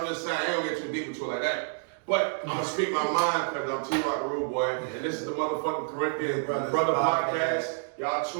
just saying, I ain't gonna get too deep into it like that. But I'm gonna speak my mind because I'm T-Rock the Rude Boy, and this is the motherfucking Corinthians Brother Podcast. Y'all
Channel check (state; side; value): silent; left; digital silence